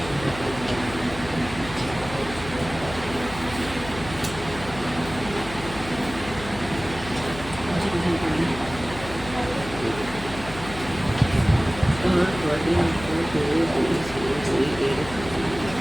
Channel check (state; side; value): noise; left; hum, 12 dB below the sound